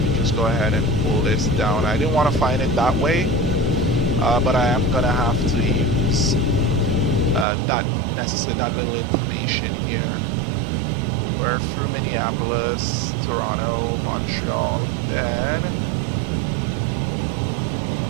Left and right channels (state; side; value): drops out; left; at 7.5 s